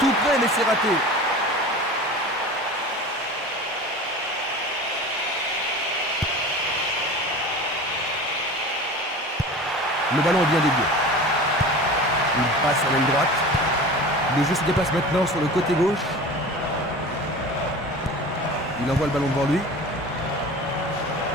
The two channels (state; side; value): normal; both; correlation 0.36